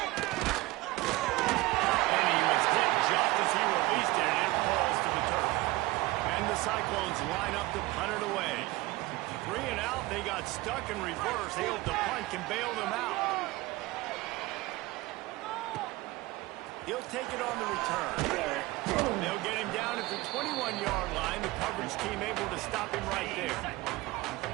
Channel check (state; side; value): quieter; left; 19.7 dB